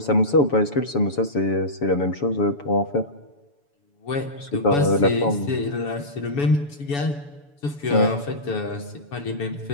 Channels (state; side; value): late; right; 7.0 ms